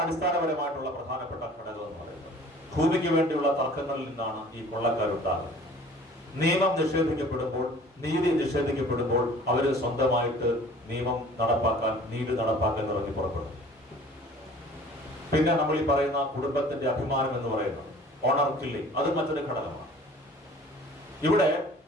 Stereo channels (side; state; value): both; normal; correlation 0.49